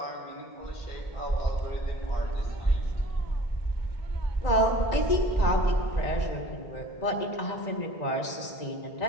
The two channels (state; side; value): late; right; 1.9 ms